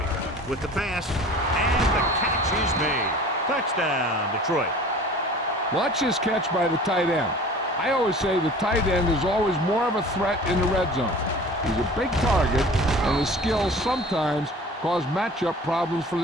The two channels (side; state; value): both; normal; correlation 0.43